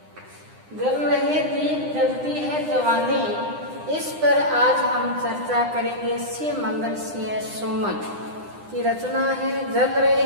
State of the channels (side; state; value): left; late; 9.8 ms